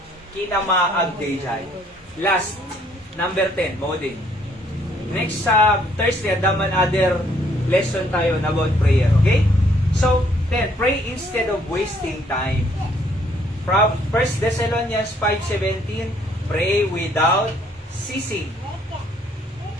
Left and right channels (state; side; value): normal; both; correlation 0.65